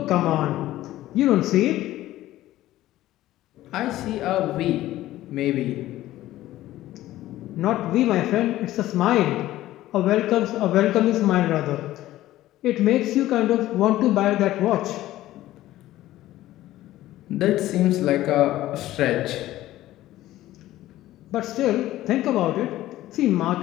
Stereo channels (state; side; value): quieter; right; 15.1 dB